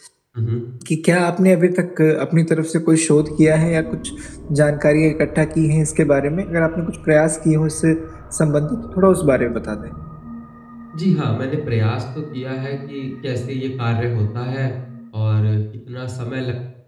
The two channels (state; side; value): identical; both; correlation 1.00